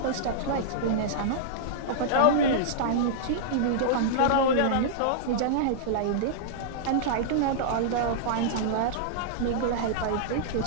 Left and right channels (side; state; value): both; different; correlation -0.02